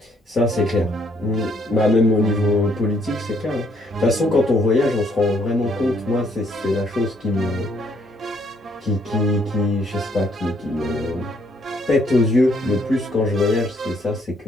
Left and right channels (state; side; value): normal; both; correlation 0.68